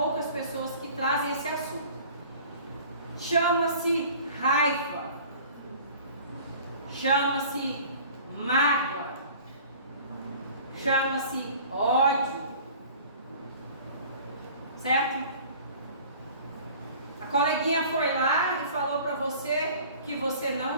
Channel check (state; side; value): inverted; both; correlation -0.46